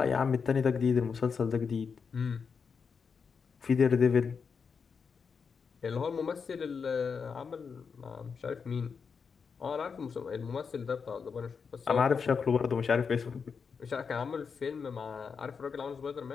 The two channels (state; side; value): quieter; right; 5.8 dB